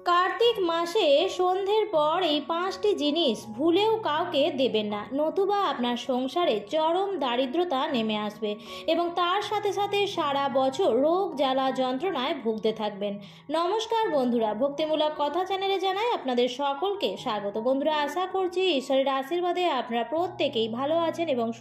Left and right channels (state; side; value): identical; both; correlation 1.00